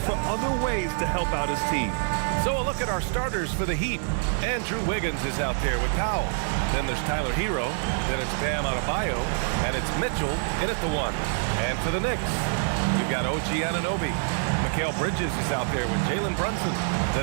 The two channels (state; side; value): silent; left; 61 dB below the other